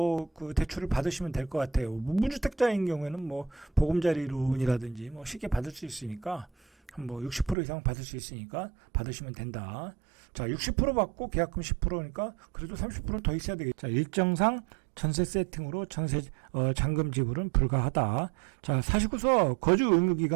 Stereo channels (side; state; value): left; drops out; at 7.6 s